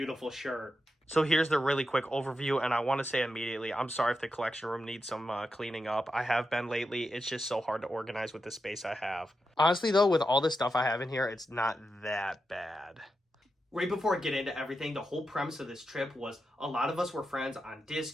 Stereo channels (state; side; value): normal; both; correlation 0.88